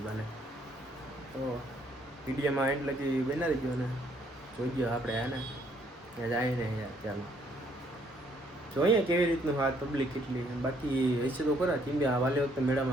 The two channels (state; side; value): normal; both; correlation 0.67